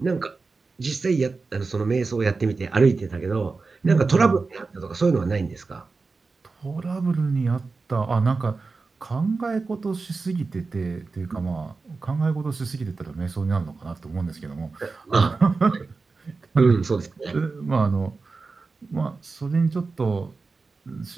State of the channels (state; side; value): quieter; left; 4.1 dB